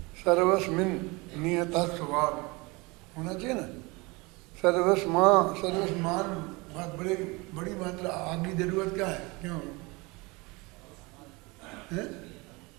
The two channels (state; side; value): quieter; left; 25.4 dB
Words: सर्वस्मिन नियता स्वभाव होना चाहिए ना। सर्वस्मान बहुत बड़ी मात्रा, आगे जरूरत क्या है, क्यों है?